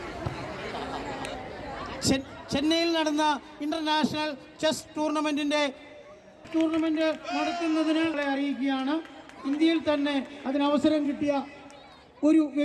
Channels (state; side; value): identical; both; correlation 1.00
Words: ചെന്നൈയിൽ നടന്ന ഇന്റർനാഷണൽ ചെസ് ടൂർണമെന്റ് നടത്തുന്നതിന് അറിയിക്കുകയാണ്. ഇന്ത്യയിൽ തന്നെ അതിനവസരം കിട്ടിയ ഒരു